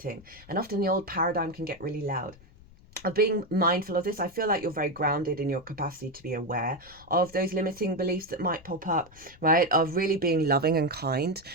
and often the old paradigm can get really loud. Of being mindful of this, I feel like you're very grounded in your capacity to be aware of those limiting beliefs that might pop up, right? Of really being loving and kind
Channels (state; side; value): noise; left; rumble, 24 dB below the sound